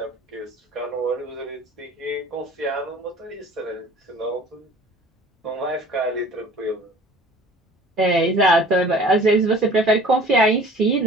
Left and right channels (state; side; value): normal; both; correlation 0.47